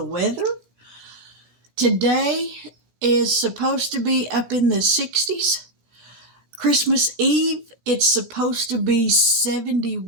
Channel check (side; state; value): left; late; 17 ms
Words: weather. Today is supposed to be up in the 60s. Christmas Eve, it's supposed to be